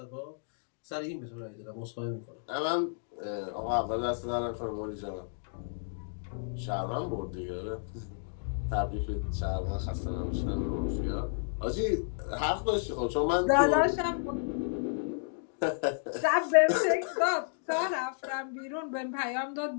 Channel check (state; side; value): silent; right; digital silence